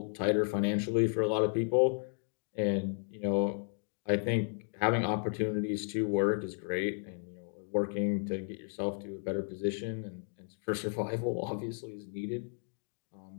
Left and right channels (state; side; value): silent; right; 55 dB below the other